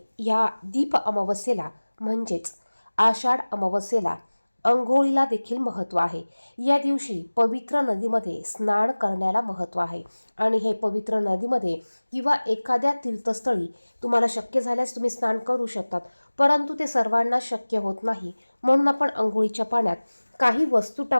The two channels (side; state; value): both; inverted; correlation -1.00